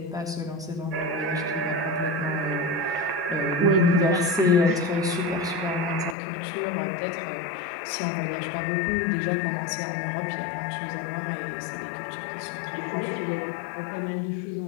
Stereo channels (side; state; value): right; drops out; at 6.2 s